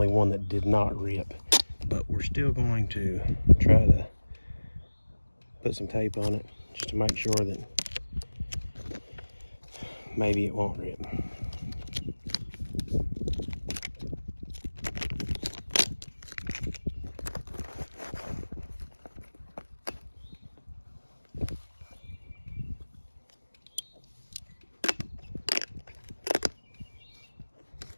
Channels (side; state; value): both; inverted; correlation -1.00